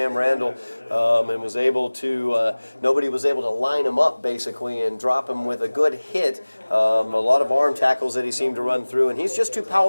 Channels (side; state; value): both; inverted; correlation -1.00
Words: Randall, and was able to, nobody was able to line him up, basically, and drop him with a good hit. A lot of arm tackles that he seemed to run through, and he's just too